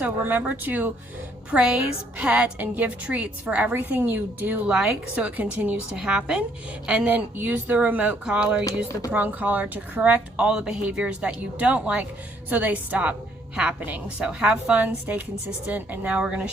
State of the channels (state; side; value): normal; both; correlation 0.67